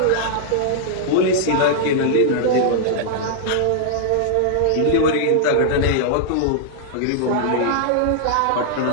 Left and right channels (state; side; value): different; both; correlation -0.01